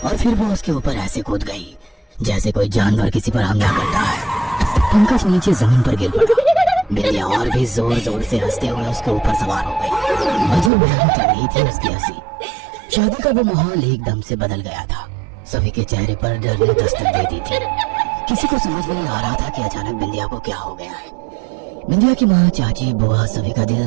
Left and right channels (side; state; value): left; drops out; at 10.7 s